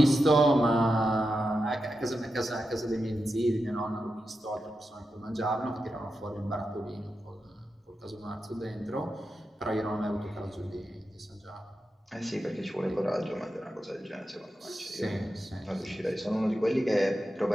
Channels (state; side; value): normal; both; correlation 0.89